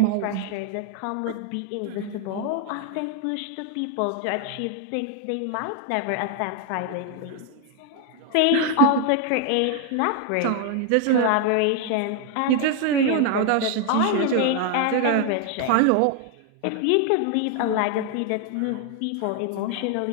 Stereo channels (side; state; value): both; different; correlation 0.01